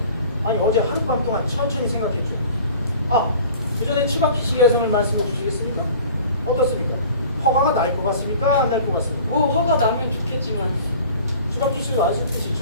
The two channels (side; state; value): both; inverted; correlation -0.45